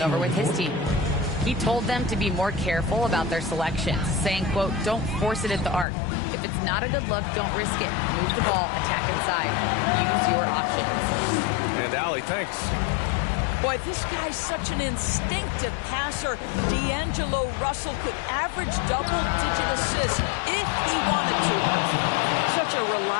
over with his team. He told them to be more careful about their selections, saying, quote, don't force it at the arc. If it's not a good look, don't risk it. Move the ball, attack inside. Use your options. And Allie, thanks. Boy, this guy's such an instinctive passer. D'Angelo Russell could average double-digit assists if he wanted to. Such a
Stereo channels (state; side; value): drops out; right; at 5.9 s